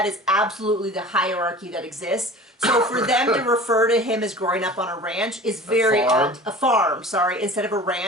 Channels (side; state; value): both; normal; correlation 0.40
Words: is absolutely the hierarchy that exists. So for them to refer to him as growing up on a ranch is very a farm, sorry, instead of a